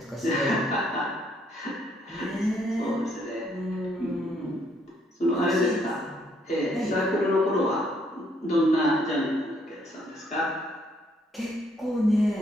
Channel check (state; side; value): normal; both; correlation 0.69